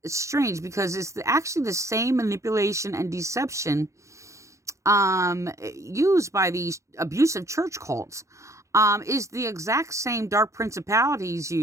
it's strange because it's actually the same manipulation and deception used by these abusive church cults, is the exact same dark principalities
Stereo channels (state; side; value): late; left; 0.15 ms